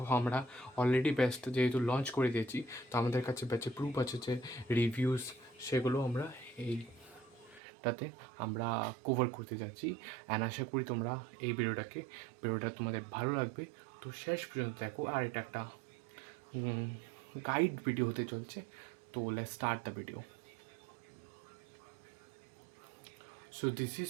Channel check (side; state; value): left; drops out; at 7.6 s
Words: আমরা অলরেডি ব্যাচটা যেহেতু লঞ্চ করে দিয়েছি, তো আমাদের কাছে ব্যাচে প্রুফ আছে, যে রিভিউস, সেগুলো আমরা এইটাতে আমরা কভার করতে যাচ্ছি। অ্যান্ড আশা করি তোমরা এই ভিডিওটা তোমাদের ভালো লাগবে। তো শেষ পর্যন্ত দেখো। আর এটা একটা গাইড ভিডিও হতে চলছে। তো let's start the video. So this is